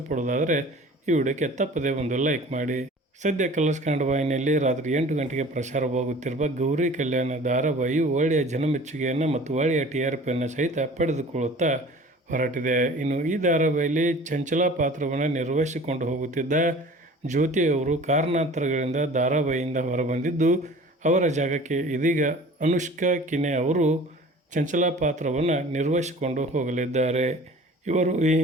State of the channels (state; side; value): normal; both; correlation 0.44